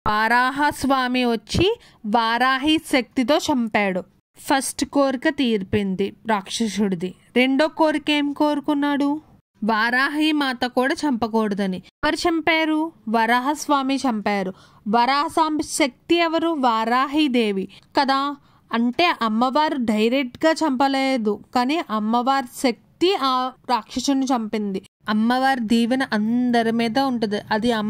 వారాహ స్వామి వచ్చి వారాహి శక్తితో చంపాడు. ఫస్ట్ కోరిక తీర్పింది రాక్షసుడిది. రెండో కోరిక ఏం కోరుకున్నాడు? వారాహి మాత కూడా చంపకూడదని. ఎవరు చంపారు? వరాహ స్వామి చంపారు. వరాహ స్వామి శక్తి ఎవరు? వారాహీదేవి కదా. అంటే అమ్మవారు డైరెక్ట్గా చంపలేదు, కానీ అమ్మవారి శక్తి ఆ రాక్షసుని చంపింది. అమ్మవారి దీవెన అందరి మీద ఉంటుంది. అది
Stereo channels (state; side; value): identical; both; correlation 1.00